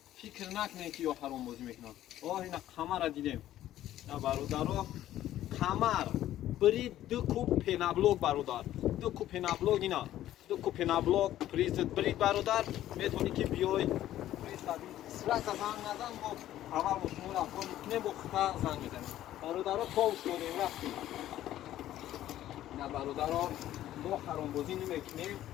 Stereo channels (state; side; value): quieter; right; 13.1 dB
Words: фикр накунем ки ё ҳаромбозӣ мекунам ина қамара дидем ина бародаро қамар бирид ду куб пенаблок бародар ду куб пенаблок ина ду куб пенаблок призит бирид бародар метавонӣ ки биёй призади сразу занг назан бо аввал бо шумо рафтор мекунем бо хута занг мезанем бародаро товш додем рафтем ина бародаро мо ҳаромбозӣ намекунем